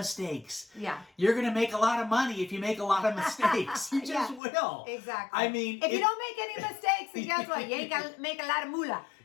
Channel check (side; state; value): right; drops out; at 4.4 s